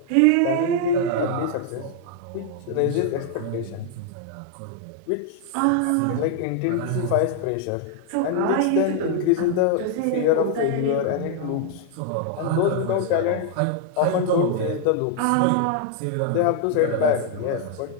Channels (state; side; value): different; both; correlation 0.00